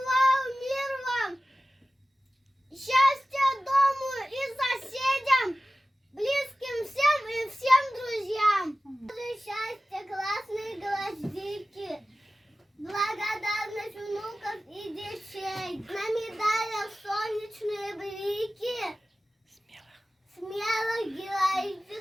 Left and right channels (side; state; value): both; normal; correlation 0.96